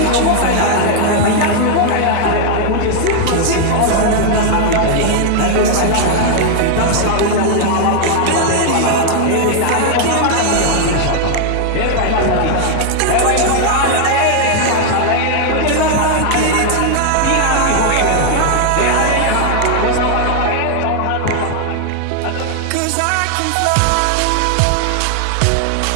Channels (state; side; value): different; both; correlation 0.00